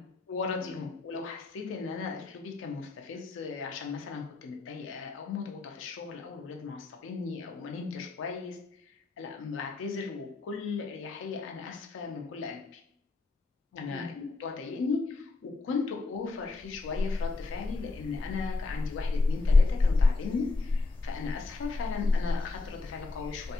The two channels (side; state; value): right; quieter; 3.6 dB